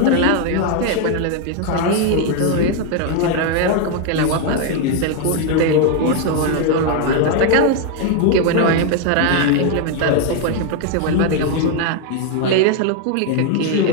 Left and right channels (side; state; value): both; different; correlation 0.01